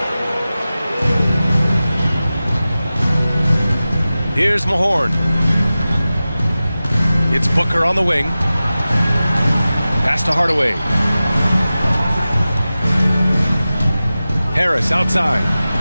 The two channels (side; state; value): both; inverted; correlation -0.95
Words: Here's Mahorn. It's Booker on the wing. Pass to Hardaway. Harris outside.